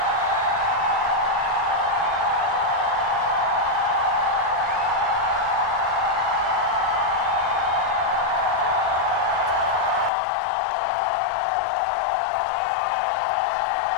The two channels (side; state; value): right; drops out; at 10.1 s